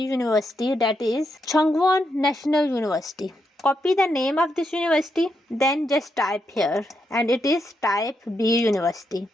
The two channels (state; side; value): normal; both; correlation 0.81